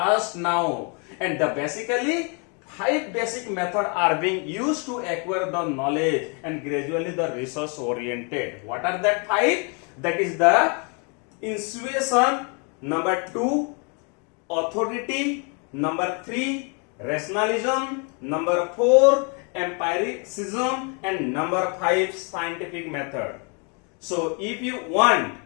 now. And basically 5 basic methods are being used to acquire the knowledge and gradually the research oriented. What are that 5? That is the intuition, number 2 authority, number 3 rationalism, number 4 empiricism, and number 5 scientific method. So if you want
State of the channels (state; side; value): quieter; right; 36.0 dB